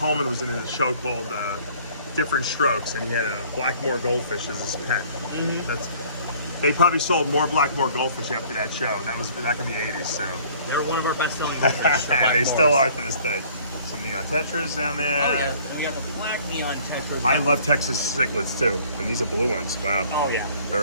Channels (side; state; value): both; inverted; correlation -0.55